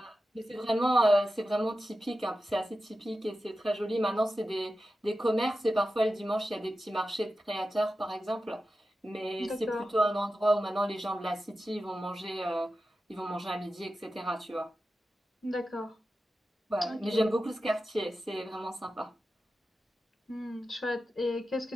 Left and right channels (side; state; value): both; normal; correlation 0.92